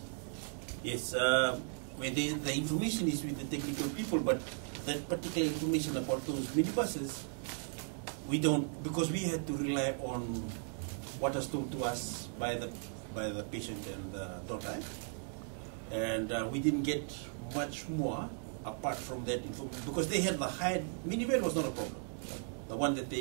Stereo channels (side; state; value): left; silent; 53 dB below the other